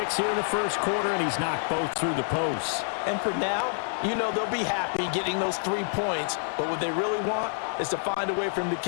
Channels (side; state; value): right; silent; digital silence